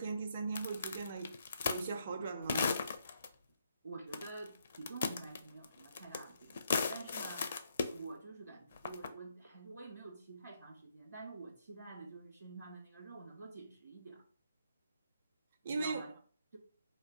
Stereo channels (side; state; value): both; inverted; correlation -0.75